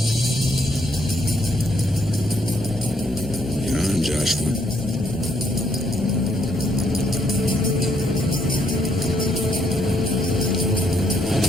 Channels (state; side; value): normal; both; correlation 0.72